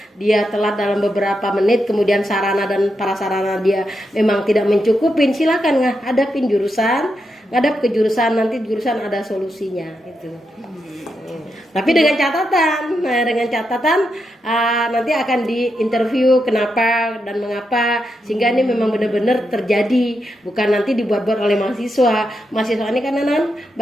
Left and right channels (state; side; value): normal; both; correlation 0.84